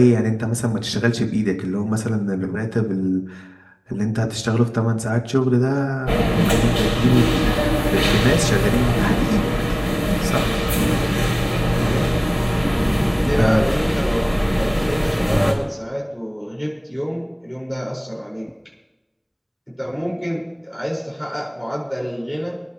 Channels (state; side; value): identical; both; correlation 1.00